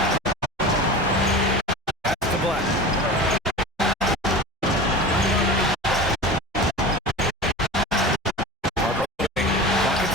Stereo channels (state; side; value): normal; both; correlation 0.32